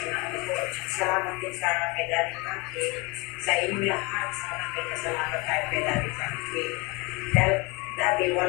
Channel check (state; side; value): quieter; right; 26.9 dB